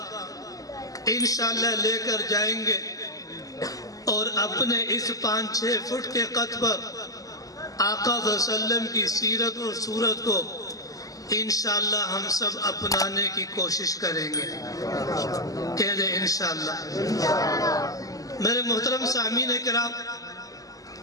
انشاءاللہ لے کر جائیں گے، اور اپنے اس 5-6 فٹ کے قد پر آقا صلی اللہ علیہ وسلم کی سیرت اور صورت کو انشاءاللہ ہم سب اپنانے کی کوشش کریں گے۔ کہہ دیں انشاءاللہ۔ میرے محترم سامعین کرام،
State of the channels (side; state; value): right; late; 0.17 ms